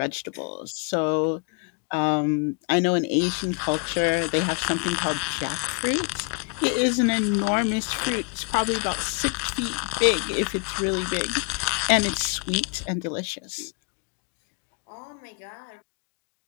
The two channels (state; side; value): quieter; right; 35.9 dB